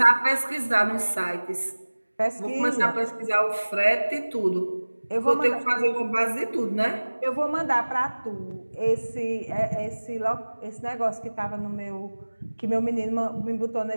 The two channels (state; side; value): inverted; both; correlation -1.00